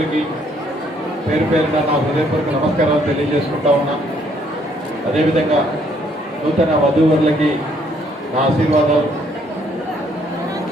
పేరు పేరున నా హృదయపూర్వక నమస్కారాలు తెలియజేసుకుంటా ఉన్నా. అదేవిధంగా నూతన వధూవరులకి నా ఆశీర్వాదాలు.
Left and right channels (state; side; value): normal; both; correlation 0.67